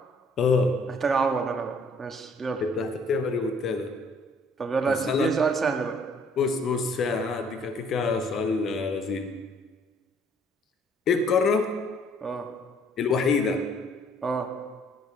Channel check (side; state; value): both; normal; correlation 0.60